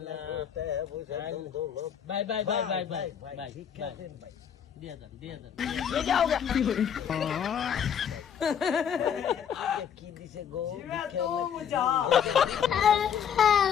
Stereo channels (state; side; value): quieter; right; 8.2 dB